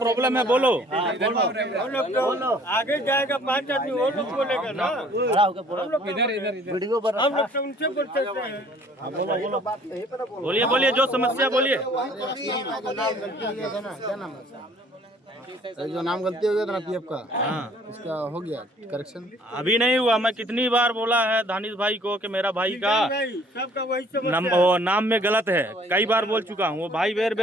है बोलो। आगे जाएगा 5 आदमी वो लोग बोलेगा ना, वीडियो पर हम लोग तो उनसे बोल सकते हैं। बोलिए बोलिए, जो समस्या बोलिए। जो नाम गलती हो गया था ना पीएफ का, हाँ, उसका हो गया करेक्शन। अभी नहीं हुआ। मैं कितनी बार बोला है दानिश भाई को कि मेरा भाई का नहीं, सबका वही समस्या है। नाम में गलत है। कई बार बोल चुका हूँ। वो भाई बेर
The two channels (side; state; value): both; normal; correlation 0.56